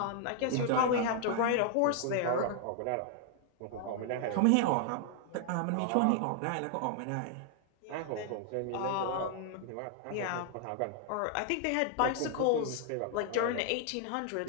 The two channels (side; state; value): both; different; correlation 0.00